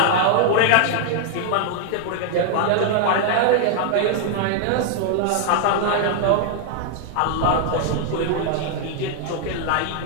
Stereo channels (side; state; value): both; different; correlation -0.01